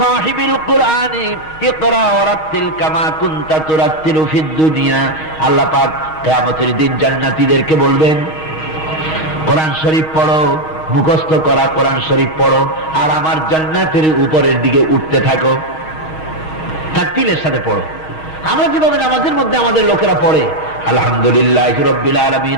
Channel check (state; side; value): late; right; 6.4 ms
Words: কুরআনি ইকরা ওয়ারাত্তিল কামা কুনতা তুরাত্তিলু ফিদ দুনিয়া। আল্লাহ পাক কিয়ামতের দিন জান্নাতীদেরকে বলবেন, কোরআন শরীফ পড়ো, মুখস্থ করা কোরআন শরীফ পড়ো, আর আমার জান্নাতের উপরের দিকে উঠতে থাকো, তাকতিলের সাথে পড়ো। আমরা যেভাবে নামাজের মধ্যে আমাদের লোকেরা পড়ে, আলহামদুলিল্লাহি রাব্বিল আলামিন